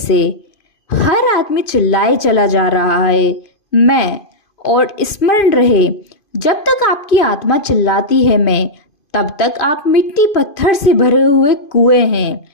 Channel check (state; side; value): late; right; 2.5 ms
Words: हर आदमी चिल्लाए चला जा रहा है मैं, और स्मरण रहे, जब तक आपकी आत्मा चिल्लाती है मैं, तब तक आप मिट्टी पत्थर से भरे हुए कुएं हैं।